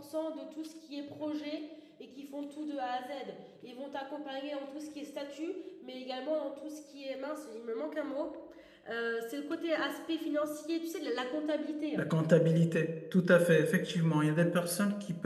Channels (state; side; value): identical; both; correlation 1.00